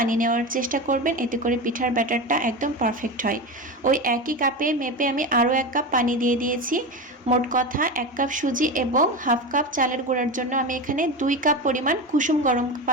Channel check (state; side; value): normal; both; correlation 0.22